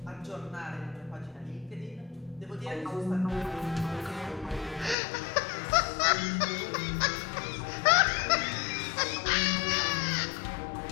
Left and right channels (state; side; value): drops out; right; at 5.0 s